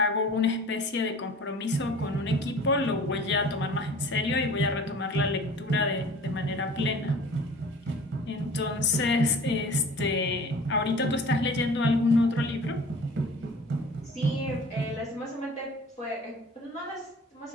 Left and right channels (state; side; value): normal; both; correlation 0.43